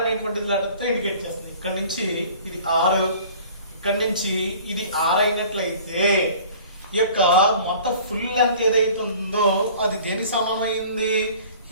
లెటర్తో ఇండికేట్ చేస్తుంది. ఇక్కడ నుంచి ఇది ఆర్, ఇక్కడ నుంచి ఇది ఆర్ అయినట్లయితే ఈ యొక్క మొత్తం ఫుల్ లెంత్ ఏదైతే ఉందో అది దేనికి సమానం అయింది?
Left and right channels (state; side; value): inverted; both; correlation -0.48